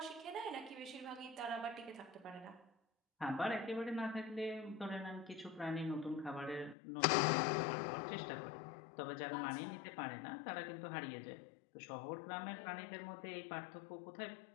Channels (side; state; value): right; drops out; at 6.8 s